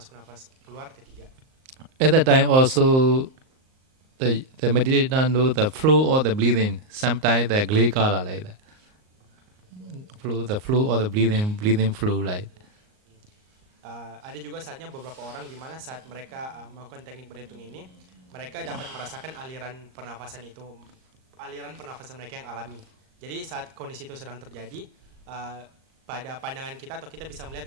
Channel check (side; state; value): left; late; 38 ms